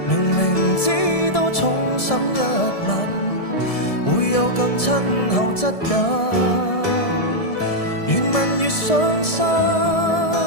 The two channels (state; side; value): late; right; 1.7 ms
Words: 明明知道重審一吻會有更親厚質感，越問越傷心，